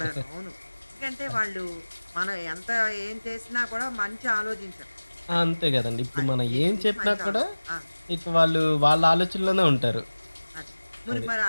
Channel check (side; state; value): both; inverted; correlation -1.00